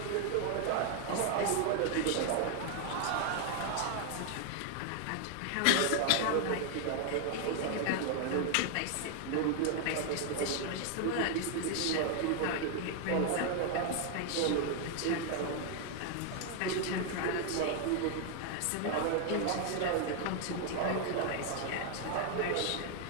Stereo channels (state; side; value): different; both; correlation 0.00